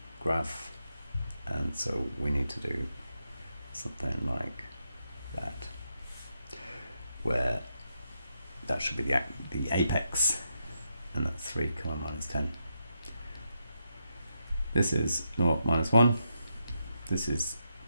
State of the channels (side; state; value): both; inverted; correlation -0.83